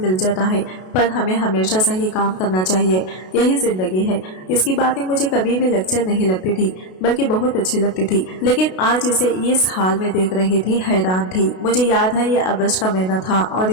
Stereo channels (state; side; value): late; right; 32 ms